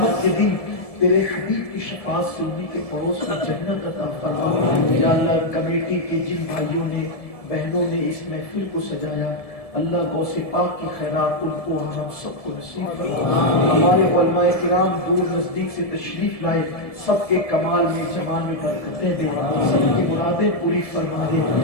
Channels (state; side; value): late; right; 1.7 ms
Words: کے دن تیرے حبیب کی شفاعت سے انہی کے پڑوس میں جنت عطا فرما یا اللہ کمیٹی کے جن بھائیوں نے بہنوں نے اس محفل کو سجایا اللہ غوث پاک کی خیرات ان کو ہم سب کو نصیب فرما ہمارے علماء کرام دور نزدیک سے تشریف لائے سب کے کمال میں جمال میں برکتیں دے سب کی مرادیں پوری فرما دے